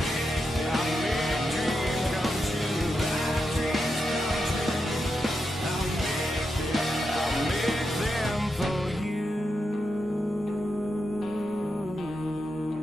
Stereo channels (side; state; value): both; normal; correlation 0.86